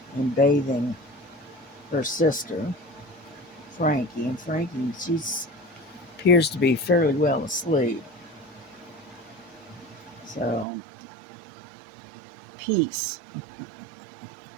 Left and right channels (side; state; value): left; drops out; at 10.7 s